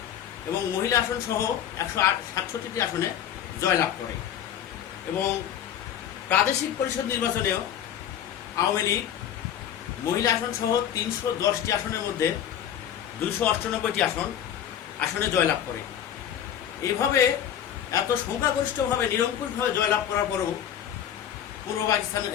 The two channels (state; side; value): quieter; right; 9.9 dB